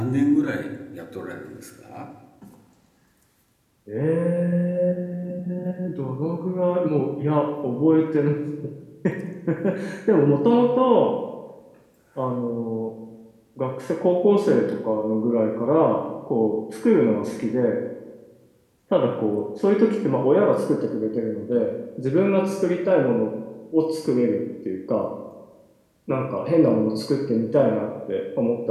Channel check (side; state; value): both; identical; correlation 1.00